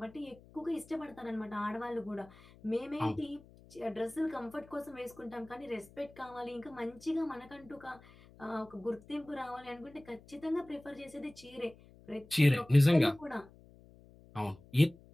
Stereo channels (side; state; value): left; noise; hum, 23 dB below the sound